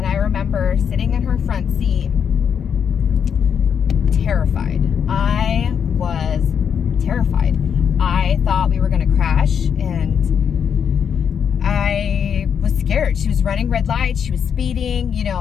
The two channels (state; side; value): quieter; right; 7.6 dB